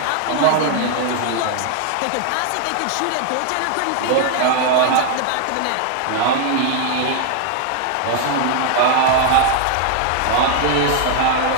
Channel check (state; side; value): different; both; correlation 0.00